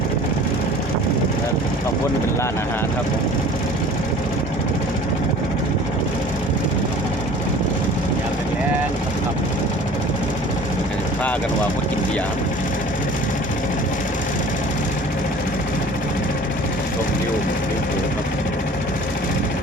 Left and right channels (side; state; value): both; normal; correlation 0.46